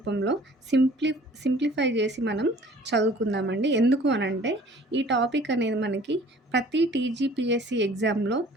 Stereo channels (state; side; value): normal; both; correlation 0.51